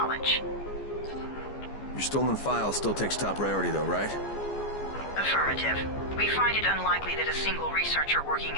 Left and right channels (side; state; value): right; late; 14 ms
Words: Your stolen file still takes top priority though, right? Affirmative. We find it unlikely that a single researcher working